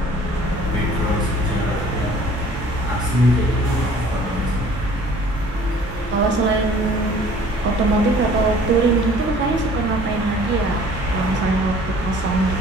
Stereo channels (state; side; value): normal; both; correlation 0.52